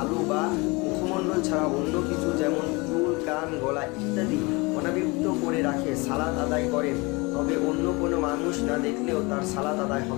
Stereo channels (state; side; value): quieter; right; 26.1 dB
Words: বা মুখমণ্ডল ছাড়া অন্য কিছু যেমন চুল, কান, গলা ইত্যাদি অনাবৃত করে রাখে, সালাত আদায় করেন, তবে অন্য কোনো মানুষ না দেখলেও তার সালাত আদায়